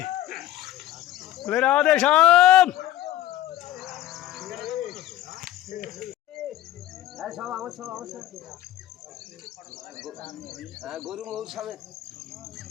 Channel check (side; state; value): right; quieter; 13.7 dB